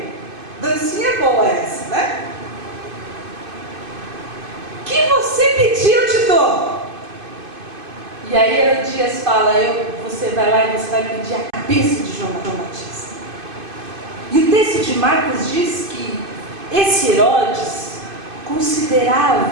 Dancinha boa essa, né? O que você pedir, eu te dou. E aí Herodias fala: você vai lá e você vai pedir a cabeça de João Batista. E o texto de Marcos diz que esse Herodes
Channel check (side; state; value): left; late; 2.5 ms